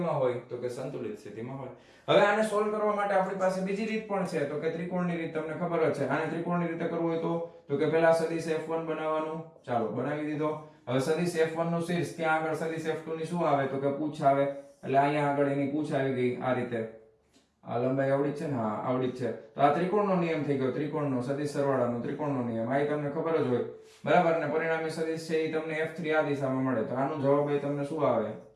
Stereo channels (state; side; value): identical; both; correlation 1.00